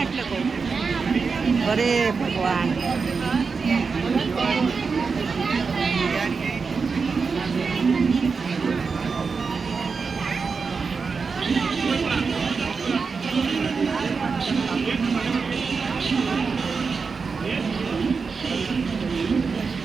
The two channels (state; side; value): quieter; left; 5.0 dB